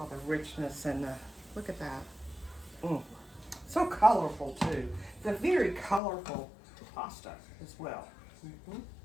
the richness and the, look at that. So colorful too. It's a very colorful pasta as well.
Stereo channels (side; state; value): right; drops out; at 6.0 s